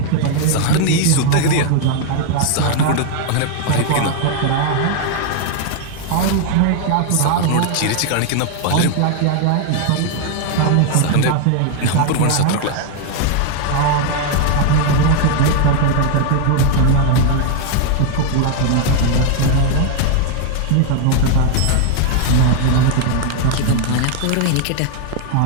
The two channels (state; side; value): different; both; correlation 0.00